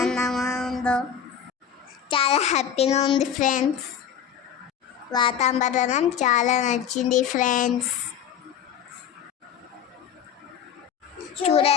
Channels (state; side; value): quieter; right; 8.5 dB